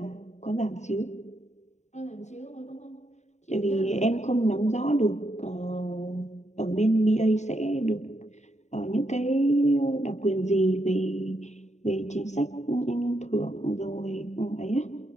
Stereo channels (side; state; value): right; late; 0.34 ms